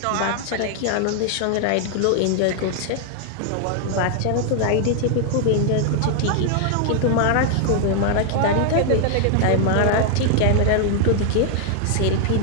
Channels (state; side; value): different; both; correlation 0.00